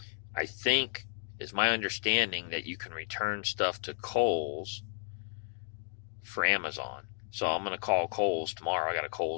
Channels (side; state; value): right; silent; digital silence